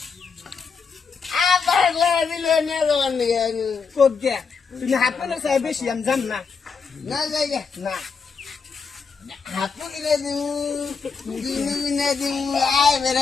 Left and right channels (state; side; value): quieter; right; 5.5 dB